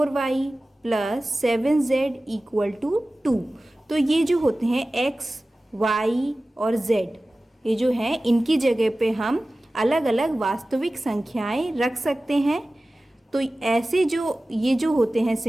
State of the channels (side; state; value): both; normal; correlation 0.96